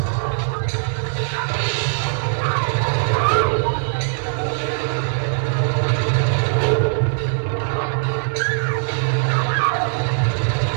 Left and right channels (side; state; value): left; silent; 64 dB below the other